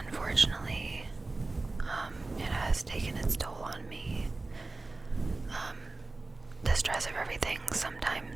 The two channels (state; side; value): quieter; left; 3.3 dB